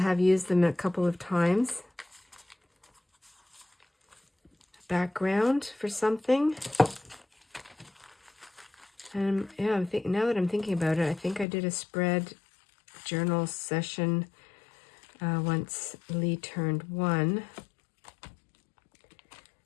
used them a couple of times. Background for something. And yeah, now that I'm thinking about it, I think I did a spread journal session once Lee turned 1.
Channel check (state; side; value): drops out; right; at 11.5 s